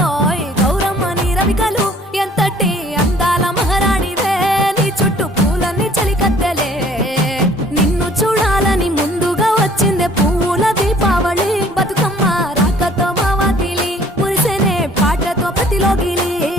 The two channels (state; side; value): normal; both; correlation 0.56